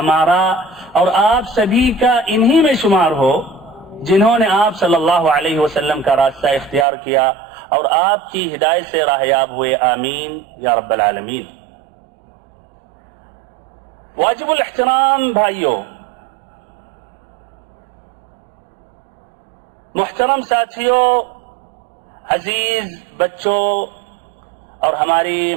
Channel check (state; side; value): drops out; left; at 6.9 s